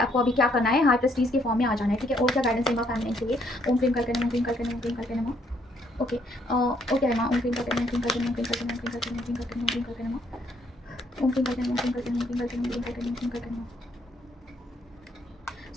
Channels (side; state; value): both; normal; correlation 0.69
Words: अभी क्या करना है, हाई प्रेस्टीज के फॉर्म में आ जाना है, ठीक है। और क्या गाइडेंस है माँ फेमिनाइन के लिए? ओम क्लीम करके नमः, ओम क्लीम करके नमः, ओम क्लीम करके नमः, ओके। ओके माँ, ओम क्लीम करके नमः, ओम क्लीम करके नमः, ओम क्लीम करके नमः, ओम क्लीम करके नमः, ओम क्लीम करके नमः, ओम क्लीम करके नमः, ओम क्लीम करके नमः, ओम क्लीम करके नमः, ओम क्लीम करके नमः, ओम क्लीम करके नमः, ओम क्लीम करके नमः।